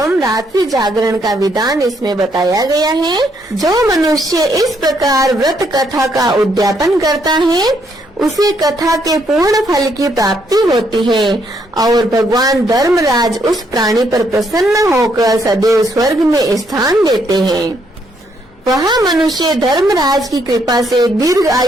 रात्रि जागरण का विधान इसमें बताया गया है। जो मनुष्य इस प्रकार व्रत कथा का उद्यापन करता है उसे कथा के पूर्ण फल की प्राप्ति होती है और भगवान धर्मराज उस प्राणी पर प्रसन्न होकर सदैव स्वर्ग में स्थान देते हैं। वह मनुष्य धर्मराज की कृपा से दीर्घ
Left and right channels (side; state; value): both; normal; correlation 0.73